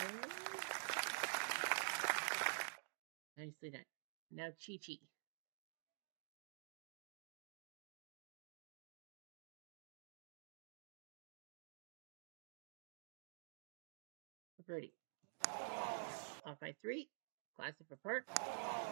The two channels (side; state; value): left; silent; digital silence